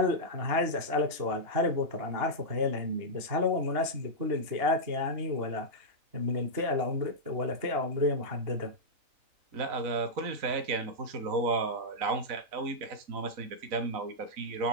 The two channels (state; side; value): late; left; 2.8 ms